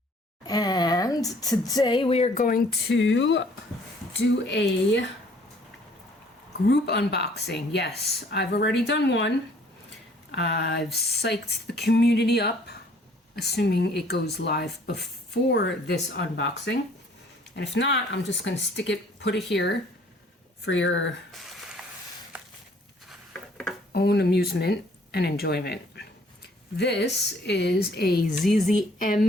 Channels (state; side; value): normal; both; correlation 0.59